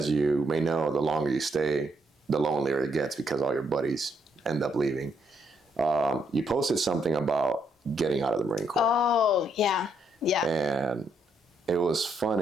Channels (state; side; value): normal; both; correlation 0.74